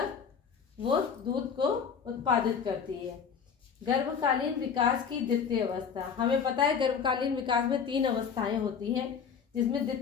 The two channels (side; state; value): right; quieter; 6.7 dB